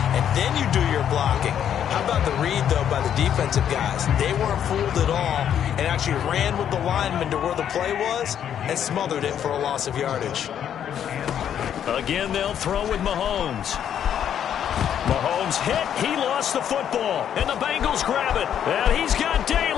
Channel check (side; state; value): right; quieter; 9.4 dB